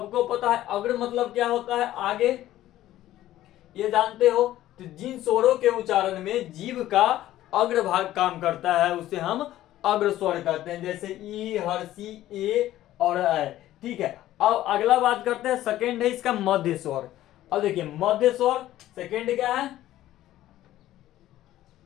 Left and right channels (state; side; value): quieter; right; 14.1 dB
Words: पता है अग्र मतलब क्या होता है? आगे। ये जानते हो। तो जिन स्वरों के उच्चारण में जीभ का अग्रभाग काम करता है उसे हम अग्र स्वर कहते हैं, जैसे ई, हर्षी, ए और ऐ। ठीक है, अब अगला बात करते हैं, सेकेंड है इसका मध्य स्वर। अब देखिए मध्य स्वर सेकेंड क्या है,